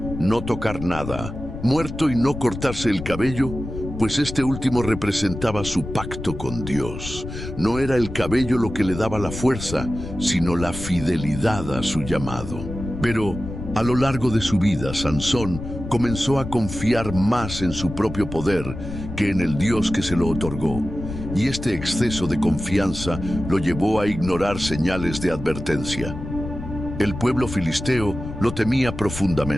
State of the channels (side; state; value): left; noise; rumble, 9 dB below the sound